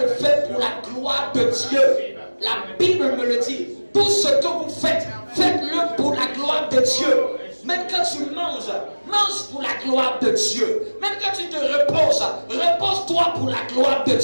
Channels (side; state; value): both; inverted; correlation -1.00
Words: faire pour la gloire de Dieu. La Bible me le dit. Tout ce que vous faites, faites-le pour la gloire de Dieu. Même quand tu manges, mange pour la gloire de Dieu. Même quand tu te reposes, repose-toi pour la gloire de